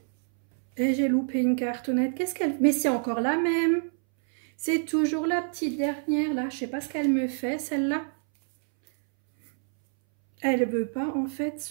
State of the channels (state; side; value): silent; left; 60 dB below the other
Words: Et j'ai loupé une cartonnette. Qu'est-ce qu'elle... Mais c'est encore la même. C'est toujours la petite dernière, là. Je sais pas ce qu'elle me fait, celle-là. Elle veut pas, en fait,